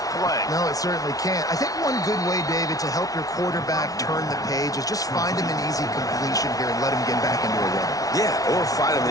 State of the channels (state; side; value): late; right; 0.18 ms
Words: play. No, it certainly can't. I think one good way, David, to help your quarterback turn the page is just find him an easy completion here and let him get back into a rhythm. Yeah, or find him